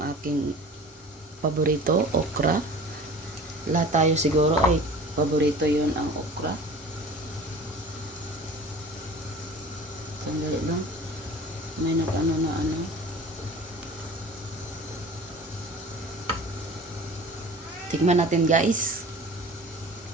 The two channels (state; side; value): normal; both; correlation 0.42